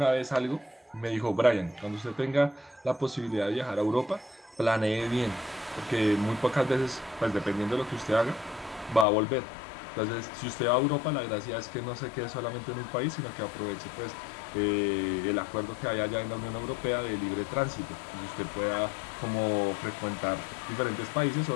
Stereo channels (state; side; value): drops out; right; at 9.1 s